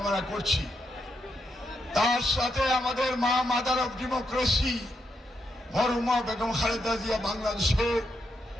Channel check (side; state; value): both; normal; correlation 0.81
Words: করছি। তার সাথে আমাদের মা মাদার অফ ডেমোক্রেসি মরহুমা বেগম খালেদা জিয়া বাংলাদেশের